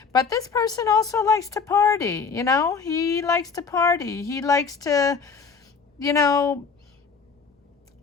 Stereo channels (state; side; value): quieter; right; 5.4 dB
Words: But this person also likes to party, he likes to party. He likes to,